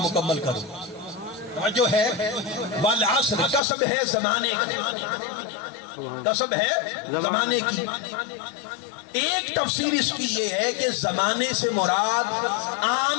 مکمل کروں۔ جو ہے والعصر، قسم ہے زمانے کی، قسم ہے زمانے کی۔ ایک تفسیر اس کی یہ ہے کہ زمانے سے مراد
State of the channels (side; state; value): right; drops out; at 3.6 s